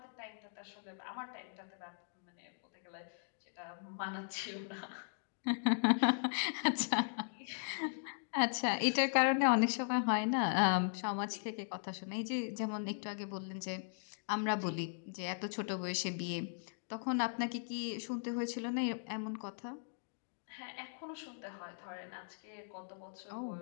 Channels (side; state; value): right; silent; digital silence